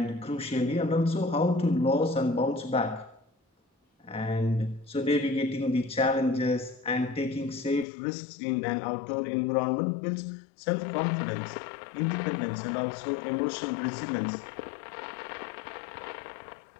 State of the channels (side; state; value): right; drops out; at 7.9 s